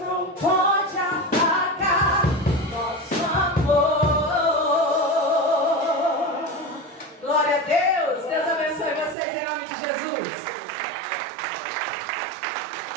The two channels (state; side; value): drops out; left; at 9.2 s